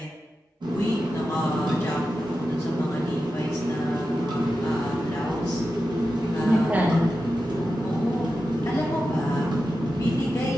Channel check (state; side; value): normal; both; correlation 0.91